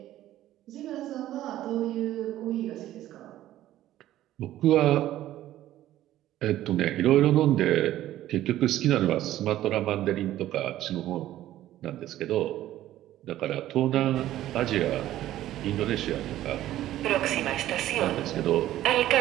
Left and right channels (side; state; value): left; quieter; 13.7 dB